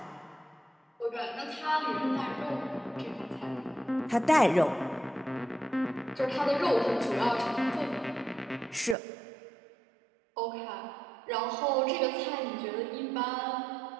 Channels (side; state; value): left; drops out; at 9.0 s